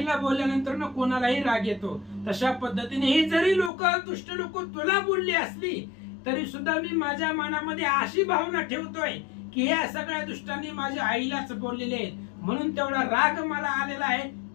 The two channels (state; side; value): drops out; right; at 3.7 s